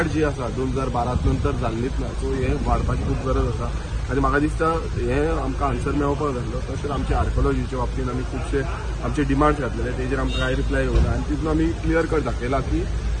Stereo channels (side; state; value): both; identical; correlation 1.00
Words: जी आसा 2012 नंतर जाल्लीच ना सो हे वाडपाची खूब गरज आसा आनी म्हाका दिसता हे आमकां आन्सर मेळोवपाक जाय तशेंच आमचे आर्कोलॉजीच्या बाबतींत आमी खुबशे आमचे डिमांड्स घातलेले तेजेर आमकां कांय रिप्लाय येवना आनी तितून आमी क्लियर कट दाखयला की